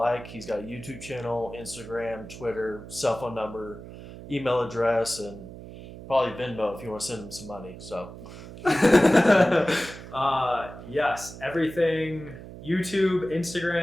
He's got a YouTube channel, Instagram, Twitter, cell phone number, email address, and probably Venmo if you want to send him some money. So, yes, everything. YouTube,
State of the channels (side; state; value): right; noise; hum, 14 dB below the sound